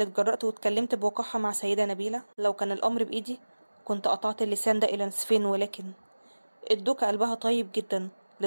اتجرأت واتكلمت بوقاحة مع سيدة نبيلة؟ لو كان الأمر بإيدي كنت قطعت اللسان ده إلى نصفين، ولكن الدوكة قلبها طيب جدا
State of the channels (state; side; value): inverted; both; correlation -1.00